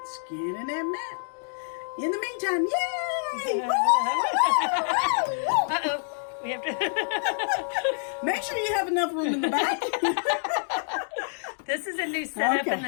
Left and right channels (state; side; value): silent; right; digital silence